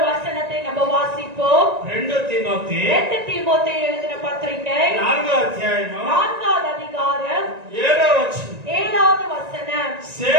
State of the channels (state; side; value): late; left; 1.9 ms